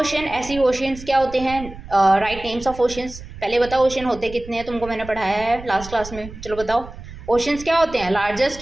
ऐसी ओशंस क्या होते हैं? Write names of oceans. पहले बताओ ओशन होते कितने हैं, तुमको मैंने पढ़ाया है लास्ट क्लास में। चलो बताओ ओशंस क्या होते हैं?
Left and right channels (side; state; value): right; noise; rumble, 14 dB below the sound